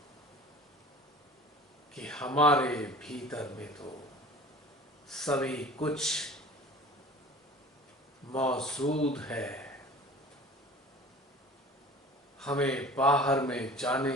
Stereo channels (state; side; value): normal; both; correlation 0.43